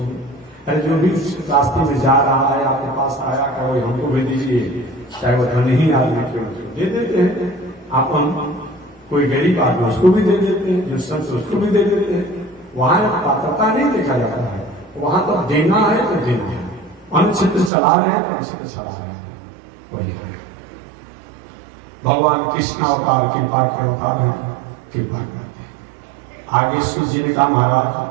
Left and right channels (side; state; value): left; drops out; at 17.7 s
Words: अरे जो भी रास्ते में जा रहा है आपके पास आया, क्या वही हमको भी दीजिए, चाहे वो धनी आदमी क्यों, दे देते हैं। आप हम कोई गरीब आदमी उसको भी दे देते हैं, जो संत उसको भी दे देते हैं। वहां पात्रता नहीं देखा जाता है, वहां तो देना है तो देना है। अन्य क्षेत्र चला रहे हैं तो अन्य क्षेत्र चला रहे हैं, वही है। भगवान कृष्ण अवतार कृपा के अवतार है, कृपा करते हैं। आगे सूर्य जी ने कहा,